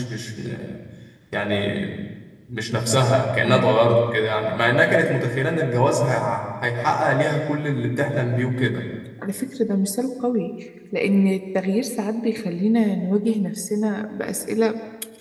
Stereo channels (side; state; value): both; identical; correlation 1.00